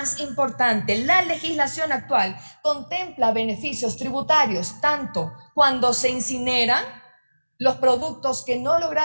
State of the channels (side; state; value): both; inverted; correlation -1.00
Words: importante, la legislación actual contempla beneficios tributarios tanto cuando se incineran los productos que no